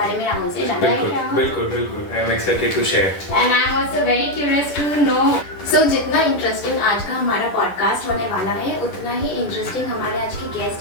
में राहुल से जानना है। बिल्कुल I am excited to share and I am also very curious to know. So जितना इंटरेस्टिंग आज का हमारा पॉडकास्ट होने वाला है उतना ही इंटरेस्टिंग हमारे आज के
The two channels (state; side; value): late; right; 10 ms